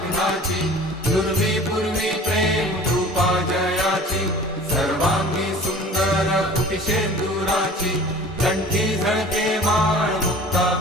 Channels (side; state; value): both; normal; correlation 0.44